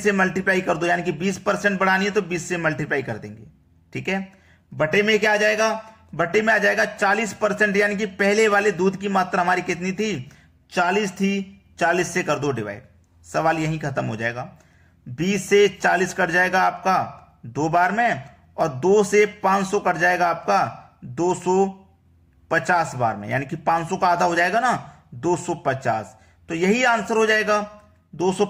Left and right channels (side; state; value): both; identical; correlation 1.00